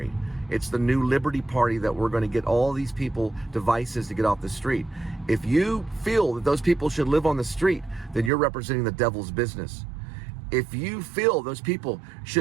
It's the New Liberty Party that we're going to get all these people devices to get off the street. If you feel that those people should live on the street, then you're representing the devil's business. If you feel those people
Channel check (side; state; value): left; drops out; at 8.3 s